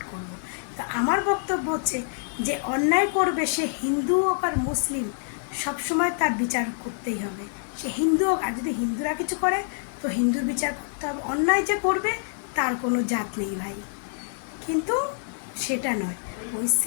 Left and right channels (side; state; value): right; silent; 61 dB below the other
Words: করবো। তো আমার বক্তব্য হচ্ছে যে অন্যায় করবে সে হিন্দু হোক আর মুসলিম, সবসময় তার বিচার করতেই হবে। সে হিন্দু হোক, আর যদি হিন্দুরা কিছু করে তো হিন্দুর বিচার করতে হবে। অন্যায় যে করবে তার কোনো জাত নেই ভাই, কিন্তু সেটা নয়। ওই